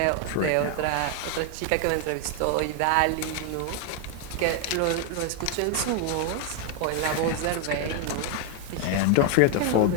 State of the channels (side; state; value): both; different; correlation 0.01